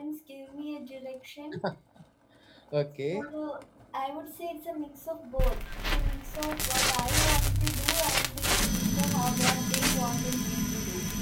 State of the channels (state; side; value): identical; both; correlation 1.00